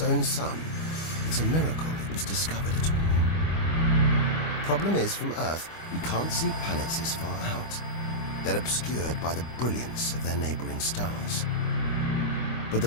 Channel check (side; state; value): right; late; 25 ms